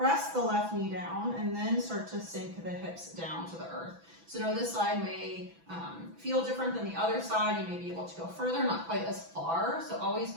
the left knee down, and then start to sink the hips down to the earth. So now this side may feel different than the other side. You may be able to go further, not quite as far. So always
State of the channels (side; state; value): left; late; 6.0 ms